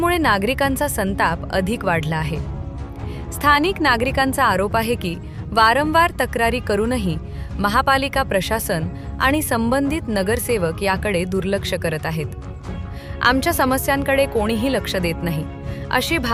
नागरिकांचा संताप अधिक वाढला आहे। स्थानिक नागरिकांचा आरोप आहे की वारंवार तक्रारी करूनही महापालिका प्रशासन आणि संबंधित नगरसेवक याकडे दुर्लक्ष करत आहेत। आमच्या समस्यांकडे कोणीही लक्ष देत नाही, अशी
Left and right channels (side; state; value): both; identical; correlation 1.00